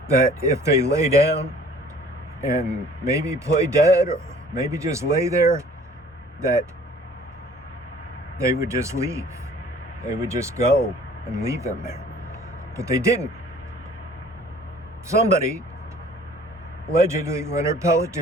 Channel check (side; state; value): both; normal; correlation 0.52